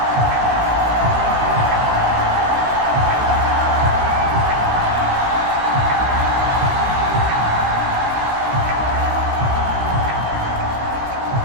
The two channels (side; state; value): left; late; 16 ms